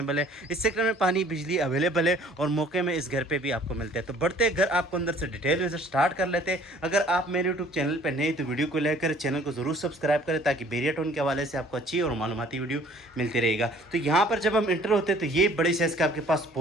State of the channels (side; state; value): both; normal; correlation 0.54